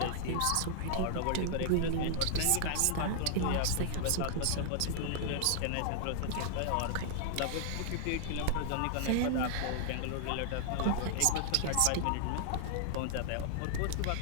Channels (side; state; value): both; different; correlation 0.00